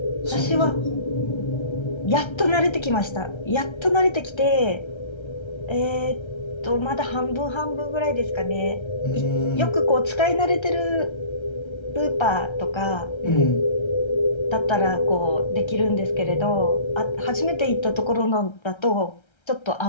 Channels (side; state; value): right; late; 1.3 ms